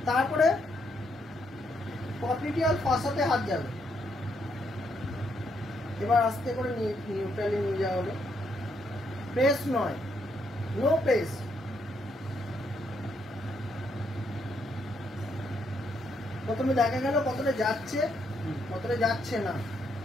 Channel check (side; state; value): both; normal; correlation 0.76